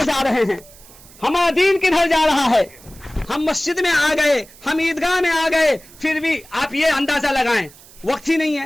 جا رہے ہیں, ہمارا دین کدھر جا رہا ہے. ہم مسجد میں آ گئے, ہم عیدگاہ میں آ گئے, پھر بھی آپ یہ اندازہ لگائیں وقت ہی نہیں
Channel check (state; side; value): noise; right; hiss, 23 dB below the sound